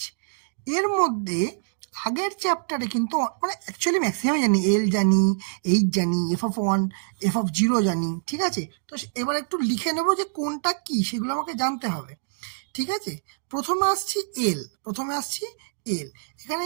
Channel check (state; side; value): silent; left; digital silence